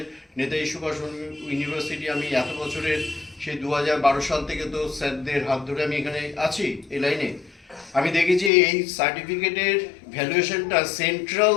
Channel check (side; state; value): right; drops out; at 8.5 s